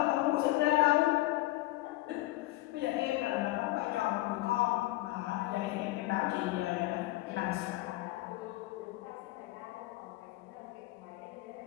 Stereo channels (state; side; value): quieter; right; 18.2 dB